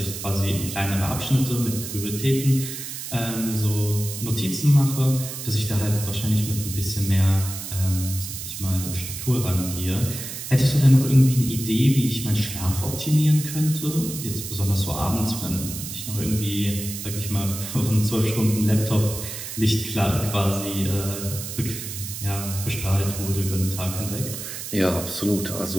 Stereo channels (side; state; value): right; noise; hiss, 8 dB below the sound